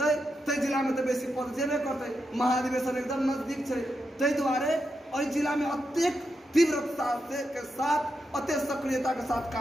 ते जिला में तो बेसी पद जेबे करते। महाधिवेशन एकदम नजदीक है, ताहि दुआरे ओहि जिला में अत्यधिक तीव्रता से के साथ अत्यंत सक्रियता के साथ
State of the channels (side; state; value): both; normal; correlation 0.85